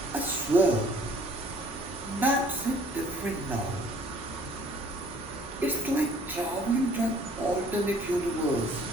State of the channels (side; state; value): both; normal; correlation 0.56